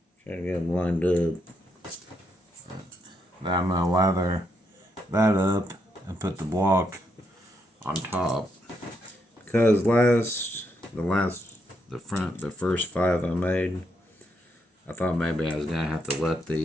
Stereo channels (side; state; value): both; normal; correlation 0.78